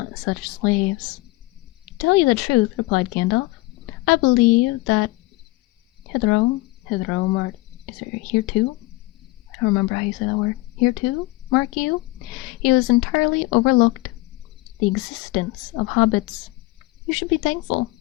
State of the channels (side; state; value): right; quieter; 21.5 dB